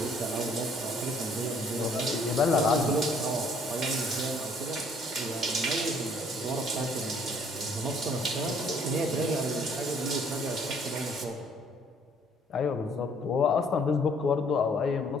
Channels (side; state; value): both; normal; correlation 0.61